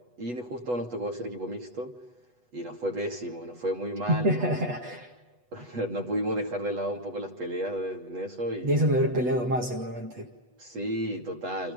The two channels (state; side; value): late; left; 8.2 ms